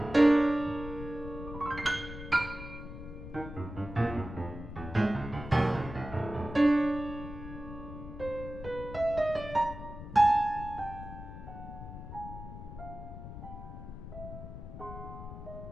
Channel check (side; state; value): left; noise; rumble, 11 dB below the sound